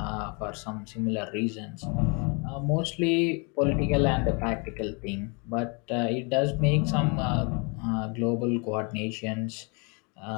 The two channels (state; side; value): quieter; right; 33.2 dB